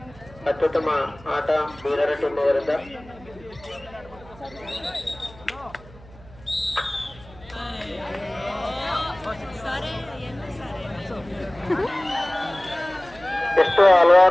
ಅತ್ಯುತ್ತಮ ಆಟ ಬೀದರ್ ಟೀಮ್ ಅವರಿಂದ. ಎಷ್ಟು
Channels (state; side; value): noise; right; hum, 21 dB below the sound